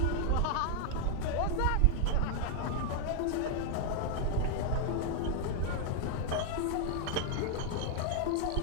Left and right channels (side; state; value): both; different; correlation 0.00